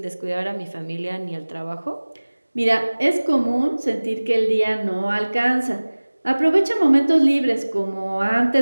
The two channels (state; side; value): inverted; both; correlation -1.00